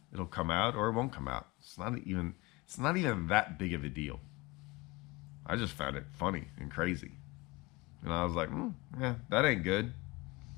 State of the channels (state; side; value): quieter; right; 22.9 dB